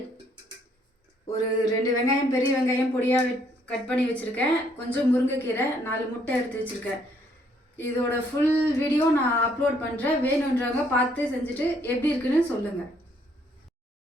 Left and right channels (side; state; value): both; normal; correlation 0.67